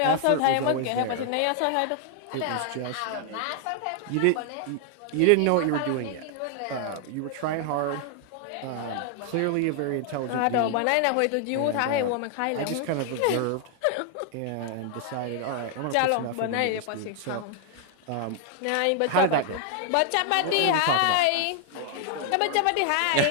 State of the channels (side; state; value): both; different; correlation 0.00